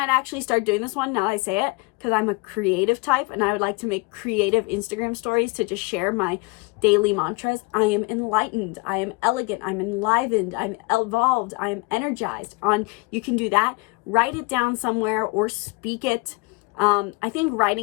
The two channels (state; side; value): quieter; right; 27.8 dB